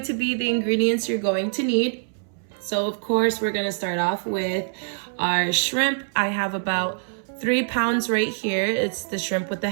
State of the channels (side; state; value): left; silent; 62 dB below the other